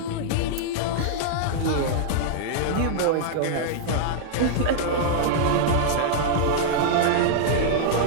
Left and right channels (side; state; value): both; different; correlation -0.01